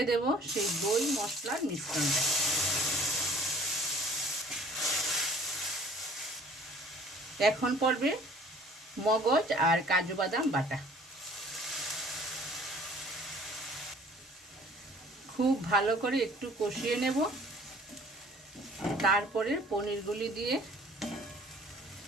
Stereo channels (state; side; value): normal; both; correlation 0.52